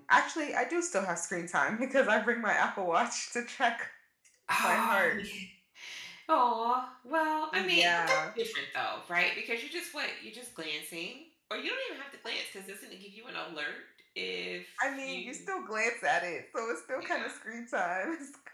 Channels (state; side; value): identical; both; correlation 1.00